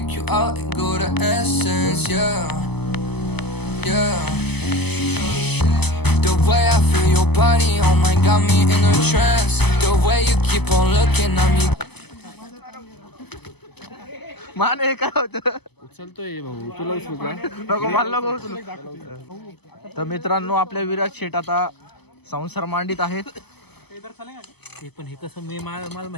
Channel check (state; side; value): late; right; 0.98 ms